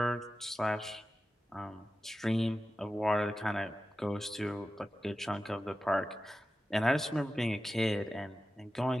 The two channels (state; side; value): normal; both; correlation 0.93